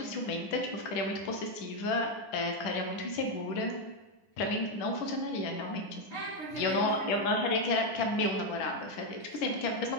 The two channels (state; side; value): late; right; 9.9 ms